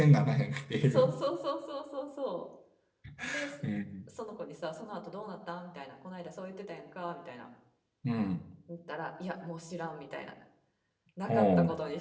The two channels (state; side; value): identical; both; correlation 1.00